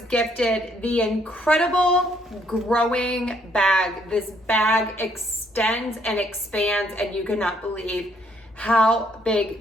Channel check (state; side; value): normal; both; correlation 0.68